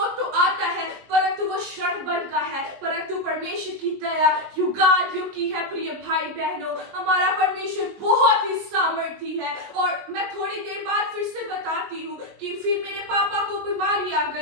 तो आता है, परंतु वो क्षण भर का है, परंतु परमेश्वर की दया युगान युग की है। प्रिय भाई बहनों, हमारा परमेश्वर बहुत ही सामर्थी है। और मैं थोड़ी देर बाद फिर से बताती हूँ कि फिर मेरे पापा को बीमारी आ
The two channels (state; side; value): late; left; 20 ms